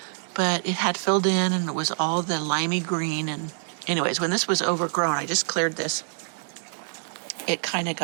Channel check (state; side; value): silent; left; digital silence